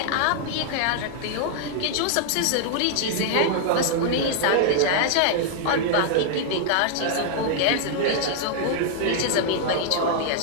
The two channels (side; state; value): both; different; correlation -0.01